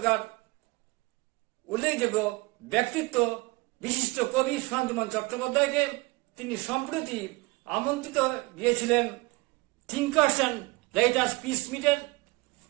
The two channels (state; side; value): quieter; left; 24.2 dB